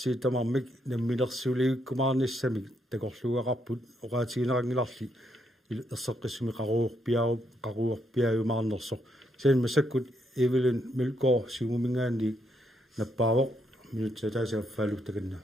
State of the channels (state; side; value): normal; both; correlation 0.77